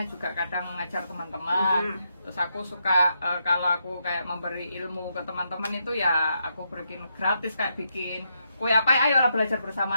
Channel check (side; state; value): both; inverted; correlation -0.81